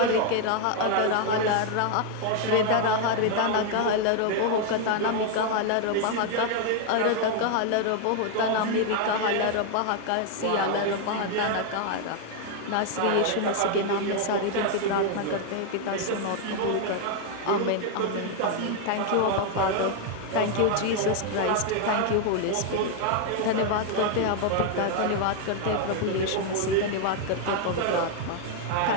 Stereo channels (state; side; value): different; both; correlation 0.00